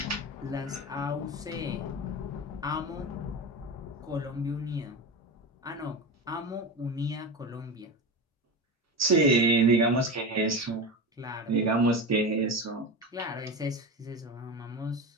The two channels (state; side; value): normal; both; correlation 0.23